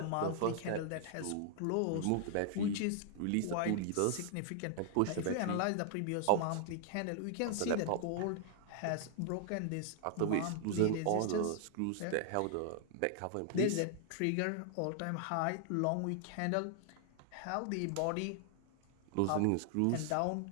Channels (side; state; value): both; different; correlation 0.00